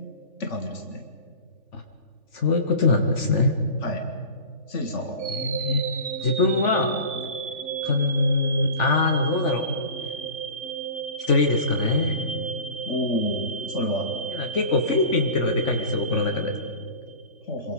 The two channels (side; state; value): right; late; 3.5 ms